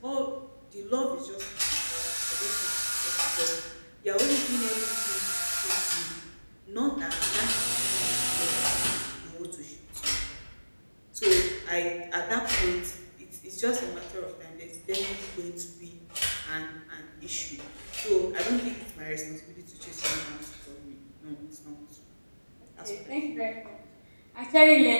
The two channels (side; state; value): both; inverted; correlation -1.00